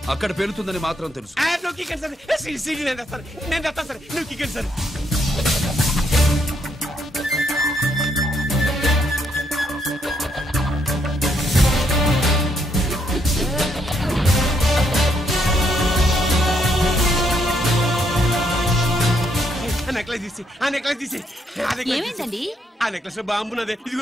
అక్కడ పేలుతుందని మాత్రం తెలుసు. ఏమైందండి? ఆ నెక్లెస్ లో బాంబున్నదే.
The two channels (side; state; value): both; normal; correlation 0.74